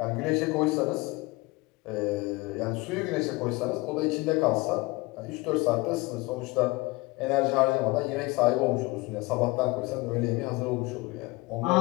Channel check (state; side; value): quieter; right; 22.9 dB